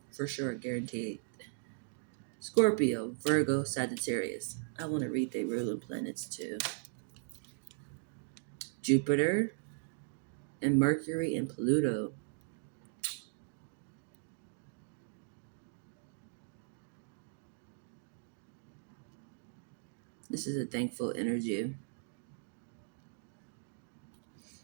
for sure, guaranteed. Scorpio, Virgo, Sagittarius. I want to read their ruling planets too. Jupiter and Mercury and Pluto. This is a thankful energy.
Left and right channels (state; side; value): silent; left; digital silence